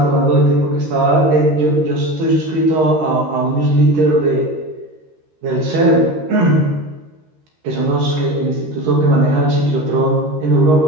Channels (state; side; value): late; left; 13 ms